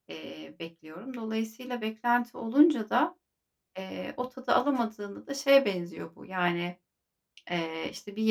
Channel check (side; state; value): both; identical; correlation 1.00